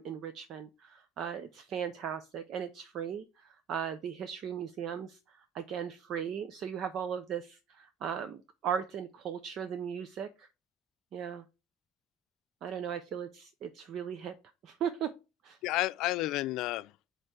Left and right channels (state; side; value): normal; both; correlation 0.37